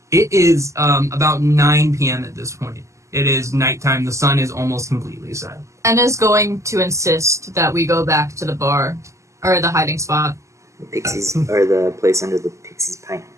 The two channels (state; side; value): late; left; 0.15 ms